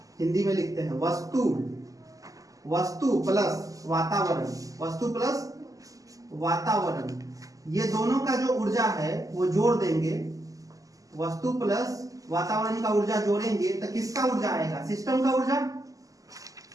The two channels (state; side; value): late; left; 0.17 ms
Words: हिंदी में लिखते हैं वस्तु, वस्तु प्लस वातावरण, वस्तु प्लस वातावरण, ये दोनों का जो ऊर्जा है वो जोड़ देंगे, वस्तु प्लस वातावरण का ऊर्जा जोड़ेंगे तो किसका ऊर्जा आएगा, सिस्टम का ऊर्जा,